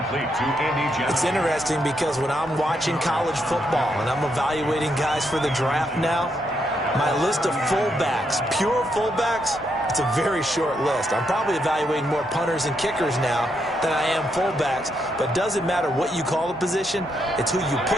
to Andy Johnson. It's interesting because when I'm watching college football and I'm evaluating guys for the draft now, my list of fullbacks, pure fullbacks, it's a very short list. I'm probably evaluating more punters and kickers now than I am fullbacks, but it doesn't matter what you call a position, it's who you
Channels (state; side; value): normal; both; correlation 0.79